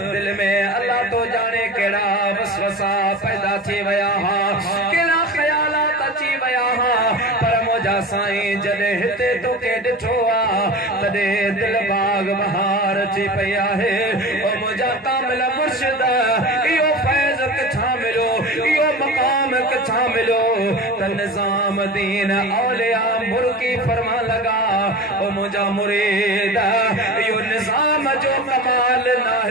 दिल में अल्लाह तो जाने केड़ा वसवसा पैदा थी वया केड़ा ख्यालात अची वया पर मुझा साईं जदे हिते तोखे ॾिठो तॾे दिल बाग बहार अची पई आहे ओ मुझा कामिल मुर्शिद इहो फैज़ किथां मिलो इहो मकाम किथां मिलो त निजामुद्दीन औलिया मुर्की फरमा लगा ओ मुझा मुरीद इहो निजाम जो कमाल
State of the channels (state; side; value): normal; both; correlation 0.32